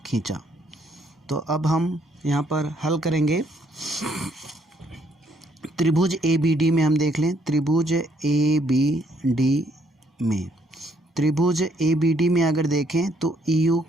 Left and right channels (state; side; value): normal; both; correlation 0.69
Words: खींचा, तो अब हम यहाँ पर हल करेंगे। त्रिभुज ABD में हम देख लें, त्रिभुज ABD में, त्रिभुज ABD में अगर देखें तो EO